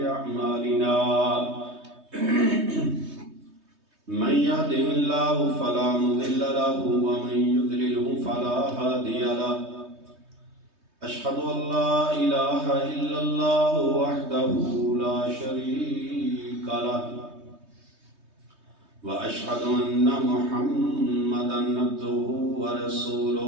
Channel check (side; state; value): left; late; 3.2 ms